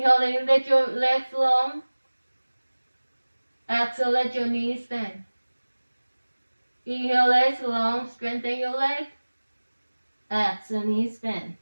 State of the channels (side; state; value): both; inverted; correlation -1.00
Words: let your legs long. Exhale, let your knees bend. Inhale, legs long, strengthen your leg. Exhale, knees bend.